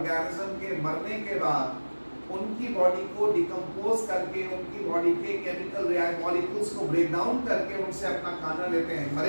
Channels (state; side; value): inverted; both; correlation -1.00